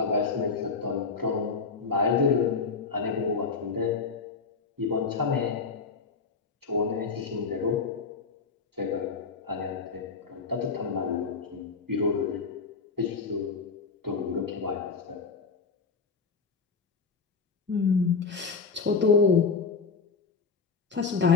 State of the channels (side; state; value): right; quieter; 4.9 dB